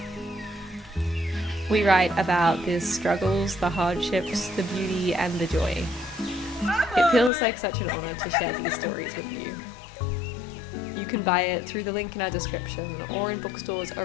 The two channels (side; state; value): right; drops out; at 7.3 s